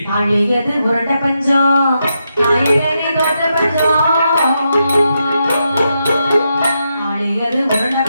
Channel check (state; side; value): inverted; both; correlation -0.84